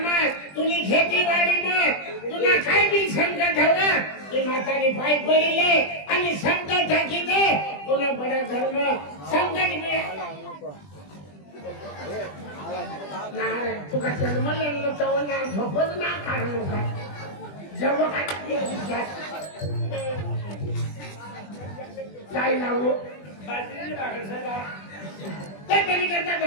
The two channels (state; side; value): late; right; 20 ms